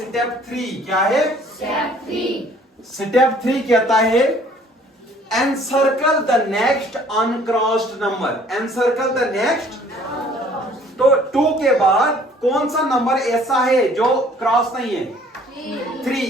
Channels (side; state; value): both; normal; correlation 0.56